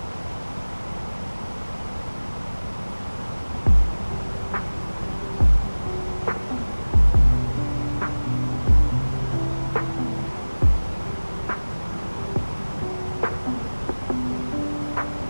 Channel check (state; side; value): inverted; both; correlation -1.00